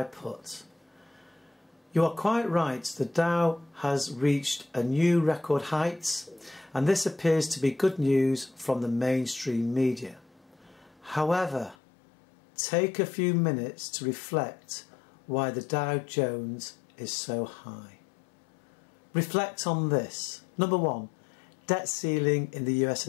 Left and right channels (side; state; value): right; drops out; at 11.8 s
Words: put. You are quite right, the Dow has reached a new record heights, and this appears to be good news from the mainstream media. However, take a few minutes to reflect why the Dow Jones is so high. Reflect on this. Number one, debt ceiling in the US